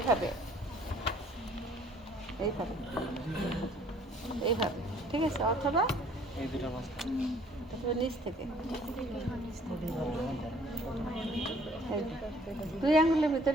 এইভাবে, এইভাবে। ঠিক আছে, অথবা এই দুটো মাছ নিচ থেকে দুই আঙ্গুলের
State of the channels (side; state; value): both; normal; correlation 0.58